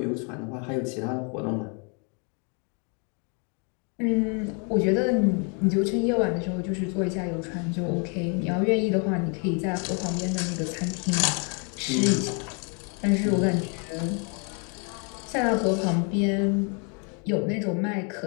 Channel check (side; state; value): right; quieter; 36.6 dB